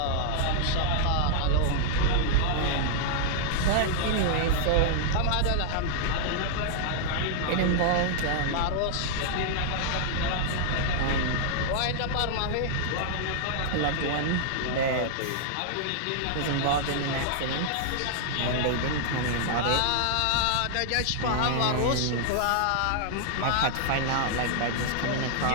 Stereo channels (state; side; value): different; both; correlation -0.01